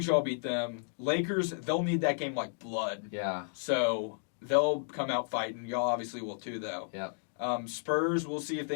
y'all beat them. Lakers, they'll need that game like blood. Yeah. So they'll come out fighting. Y'all obviously will too, though. Yeah. Spurs, we'll see if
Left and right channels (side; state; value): right; silent; digital silence